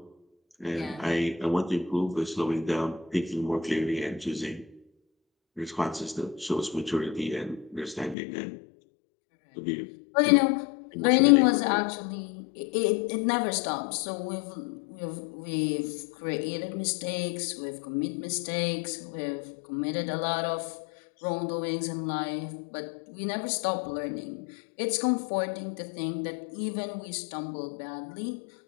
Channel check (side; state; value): right; drops out; at 8.2 s